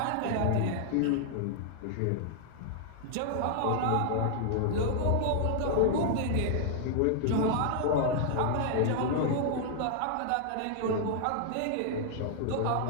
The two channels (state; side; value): different; both; correlation 0.00